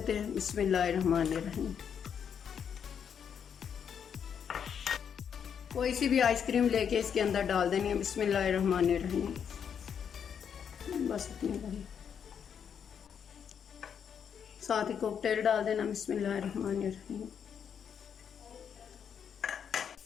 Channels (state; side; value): quieter; right; 7.7 dB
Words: हैं। बिस्मिल्लाहिर्रहमानिर्रहीम। कोई सी भी आइसक्रीम लेके इसके अंदर डाल देनी है। बिस्मिल्लाहिर्रहमानिर्रहीम। बस इतनी बड़ी। साथ ही कॉकटेल डाल देना। बिस्मिल्लाहिर्रहमानिर्रहीम।